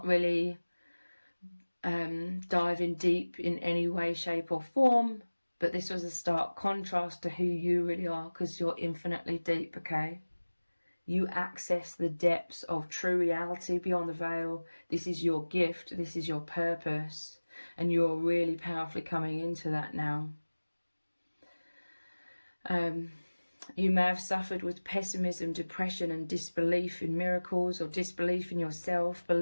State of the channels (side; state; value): both; inverted; correlation -1.00